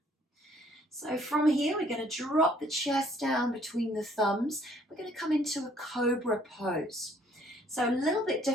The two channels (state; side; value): normal; both; correlation 0.62